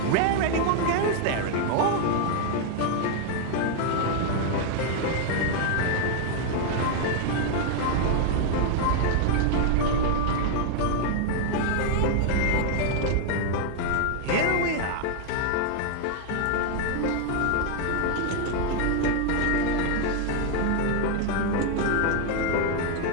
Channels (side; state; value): both; different; correlation 0.00